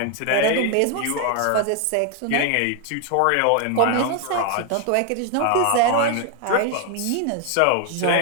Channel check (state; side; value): different; both; correlation 0.00